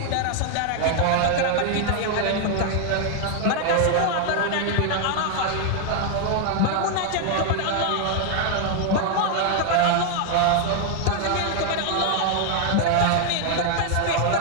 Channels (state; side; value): different; both; correlation 0.00